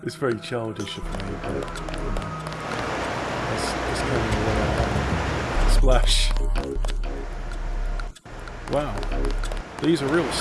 It's very childish of me, but... It's kind of splash. Wow. These are real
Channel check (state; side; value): identical; both; correlation 1.00